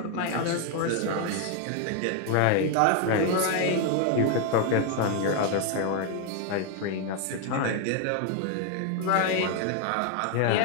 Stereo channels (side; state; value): both; different; correlation 0.01